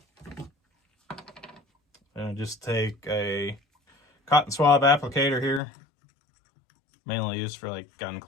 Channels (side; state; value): right; drops out; at 5.6 s